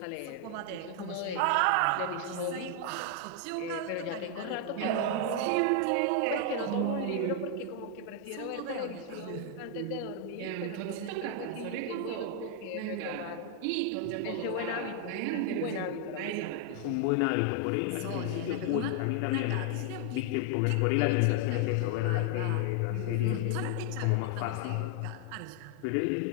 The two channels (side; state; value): both; different; correlation 0.00